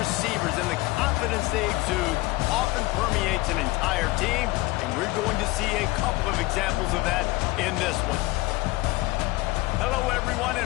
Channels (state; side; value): quieter; right; 20.9 dB